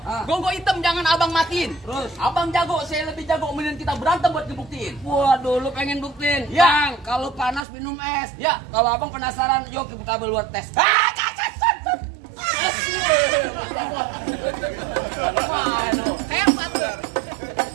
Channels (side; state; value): left; drops out; at 7.7 s